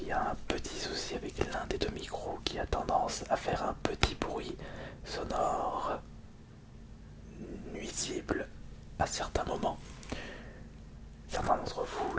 il y a un petit souci avec l'un des deux micros qui a tendance à faire un petit bruit sonore nuisible à certains moments. Certains d'entre vous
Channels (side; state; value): both; identical; correlation 1.00